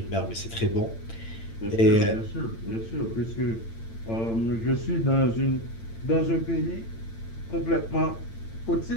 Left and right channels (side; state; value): right; late; 8.8 ms